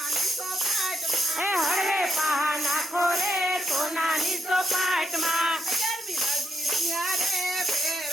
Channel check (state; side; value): normal; both; correlation 0.81